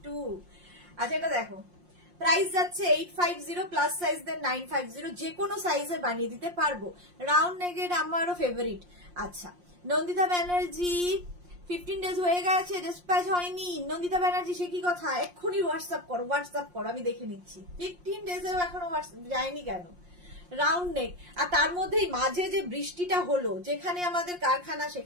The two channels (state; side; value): late; left; 5.6 ms